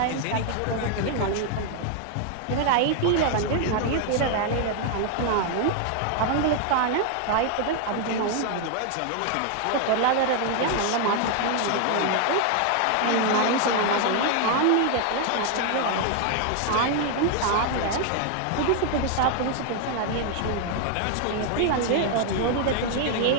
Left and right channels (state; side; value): different; both; correlation 0.00